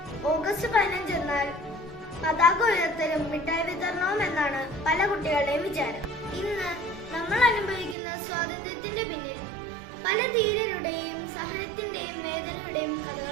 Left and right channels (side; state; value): left; drops out; at 8.0 s